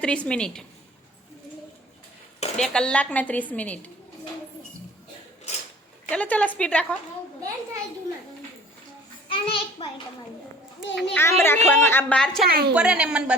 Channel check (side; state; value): both; normal; correlation 0.48